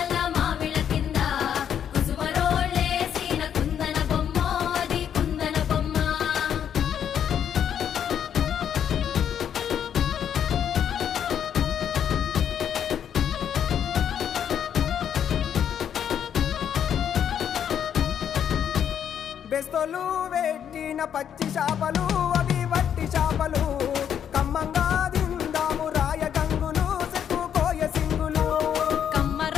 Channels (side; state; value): right; quieter; 8.9 dB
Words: మామిళ్ళ కింద కుసుమరోళ్ళేసిన కుందన బొమ్మ అది కుందన బొమ్మ బెస్తోలు పెట్టిన పచ్చి చేపలు